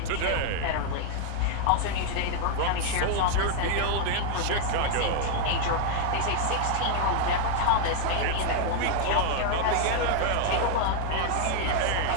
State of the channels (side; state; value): both; different; correlation 0.00